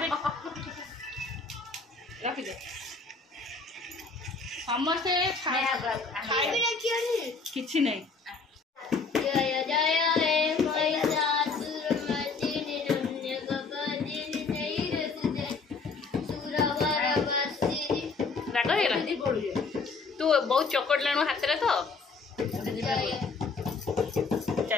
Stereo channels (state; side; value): quieter; right; 4.4 dB